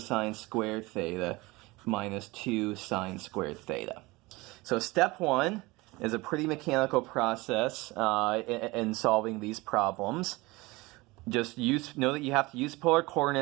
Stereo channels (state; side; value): quieter; left; 22.4 dB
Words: squared theta minus 2 sine squared theta. So step 1 is a pretty mechanical process in solving these problems. Just know that you have to use polar